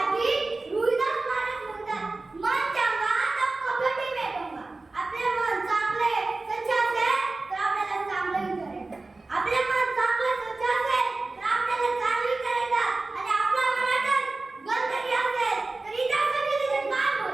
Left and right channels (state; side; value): quieter; left; 3.4 dB